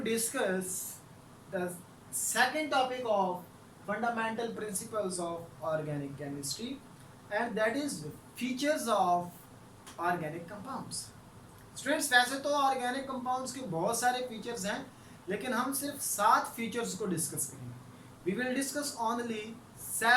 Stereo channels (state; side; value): identical; both; correlation 1.00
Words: discuss the second topic of fundamental principles of organic chemistry, and that is features of organic compounds. Students वैसे तो organic compounds के बहुत सारे features हैं, लेकिन हम सिर्फ 7 features को डिस्कस करेंगे. We will discuss only